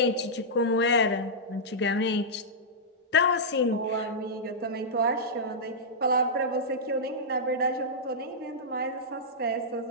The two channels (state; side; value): normal; both; correlation -0.11